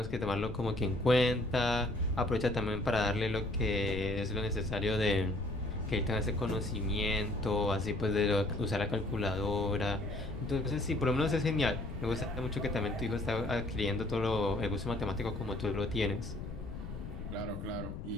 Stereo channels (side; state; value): left; noise; rumble, 8 dB below the sound